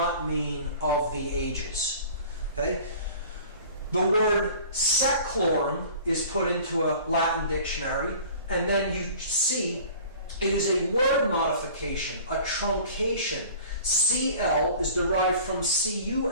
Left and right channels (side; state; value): both; inverted; correlation -0.45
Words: mean of the ages. Okay? The word seclorum is put into a Latin dictionary, and then you see it is a word modification, a truncation. CL is derived from